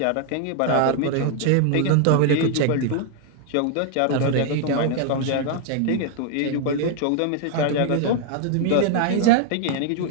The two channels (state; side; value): different; both; correlation 0.00